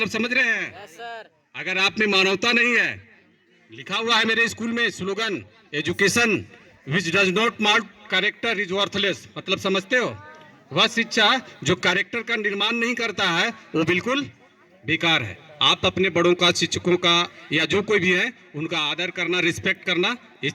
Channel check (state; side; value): identical; both; correlation 1.00